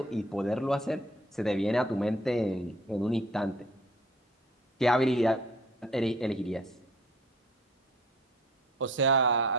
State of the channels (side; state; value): both; normal; correlation 0.52